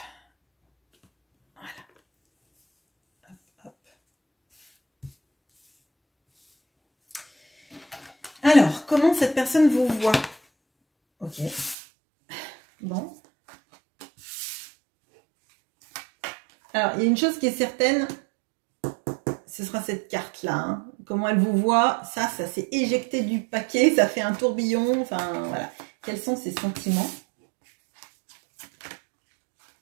Voilà. Hop, hop. Alors, comment cette personne vous voit? Ok. Bon. Alors, il y a une chose qui est certaine, ce sera cette carte-là. Hein. Comment elle vous voit, ça s'est éjecté du paquet, ça fait un tourbillon. Enfin, voilà. Quels sont ses sentiments?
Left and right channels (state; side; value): drops out; left; at 11.8 s